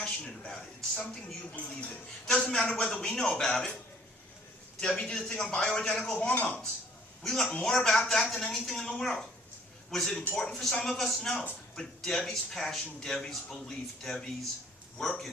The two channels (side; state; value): both; normal; correlation 0.58